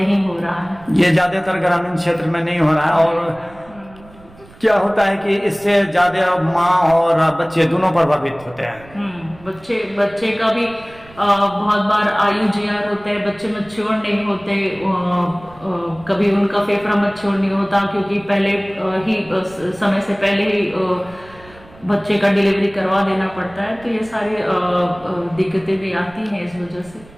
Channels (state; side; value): noise; right; rumble, 23 dB below the sound